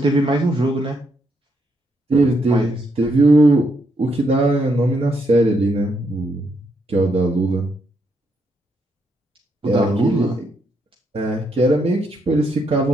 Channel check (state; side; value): normal; both; correlation 0.77